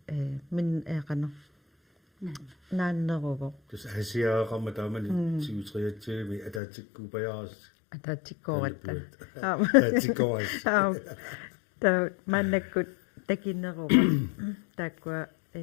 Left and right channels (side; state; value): right; drops out; at 6.6 s